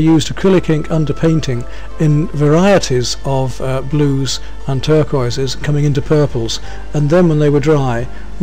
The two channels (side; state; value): both; identical; correlation 1.00